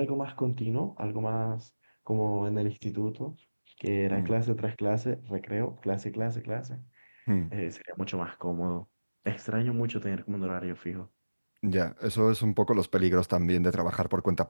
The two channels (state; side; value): inverted; both; correlation -1.00